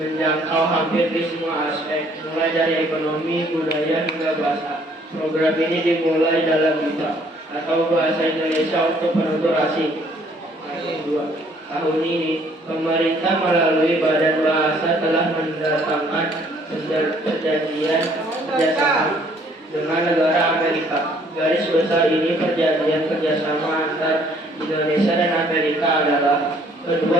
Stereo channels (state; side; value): normal; both; correlation 0.61